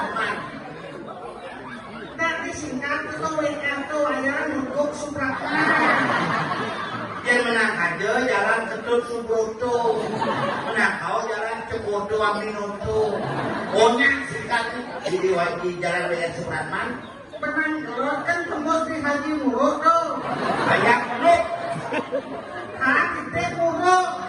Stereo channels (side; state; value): both; identical; correlation 1.00